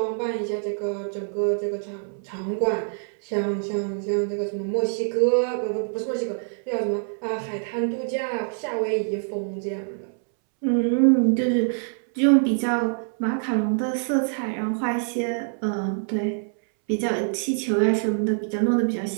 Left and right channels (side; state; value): left; silent; 62 dB below the other